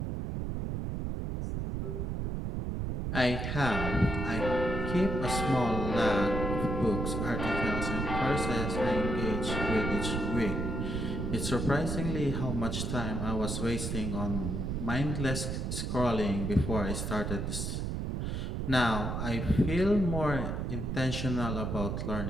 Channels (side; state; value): right; noise; rumble, 2 dB below the sound